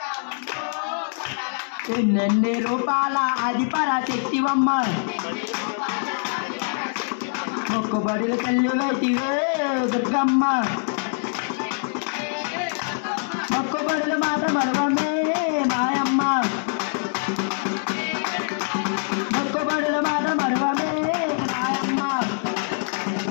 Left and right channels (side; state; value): right; silent; digital silence